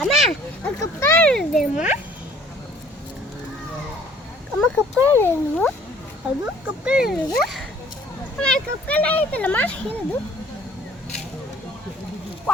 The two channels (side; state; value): both; normal; correlation 0.55